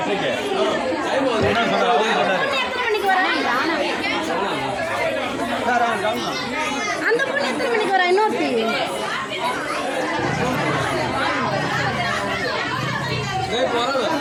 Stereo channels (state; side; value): identical; both; correlation 1.00